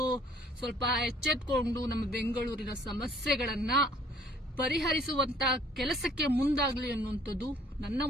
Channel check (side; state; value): both; normal; correlation 0.58